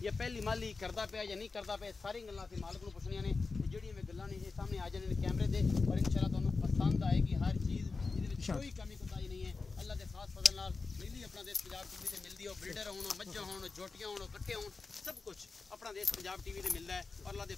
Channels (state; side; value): quieter; right; 4.2 dB